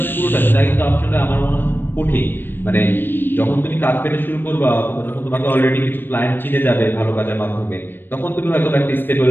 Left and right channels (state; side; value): late; right; 0.096 ms